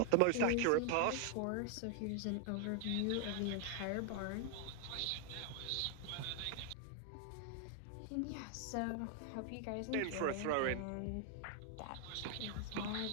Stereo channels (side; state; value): both; different; correlation 0.00